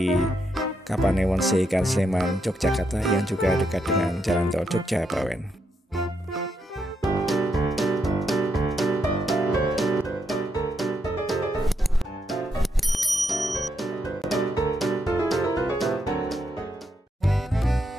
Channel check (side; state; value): both; normal; correlation 0.80